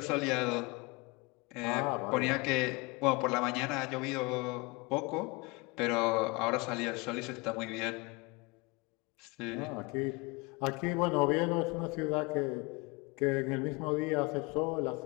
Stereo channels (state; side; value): quieter; right; 26.6 dB